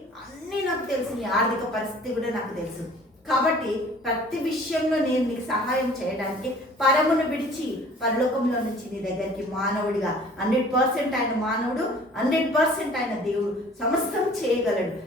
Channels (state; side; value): normal; both; correlation 0.50